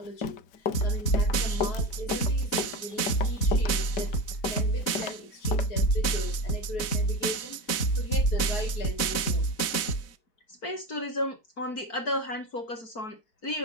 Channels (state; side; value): late; right; 4.1 ms